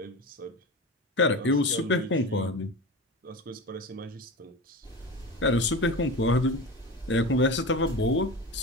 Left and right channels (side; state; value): both; normal; correlation 0.27